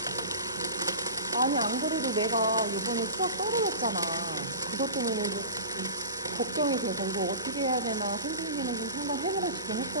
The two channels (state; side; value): inverted; both; correlation -0.34